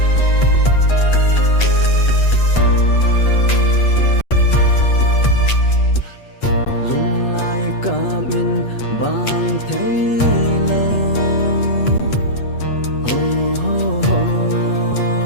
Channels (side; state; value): right; late; 8.2 ms